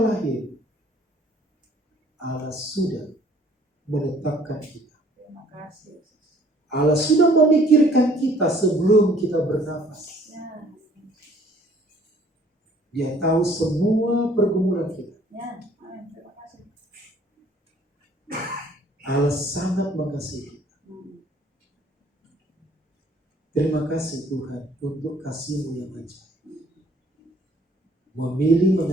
Allah sudah menetapkan kita. Terima kasih. Allah sudah memikirkan kita sebelum kita bernafas. Ya. Dia tahu semua pergumulan kita. Ya. Amin. Terima kasih. Allah sangat mengasihi kita. Terima kasih Tuhan untuk kasih-Mu yang ajaib. Memilih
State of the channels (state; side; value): normal; both; correlation 0.58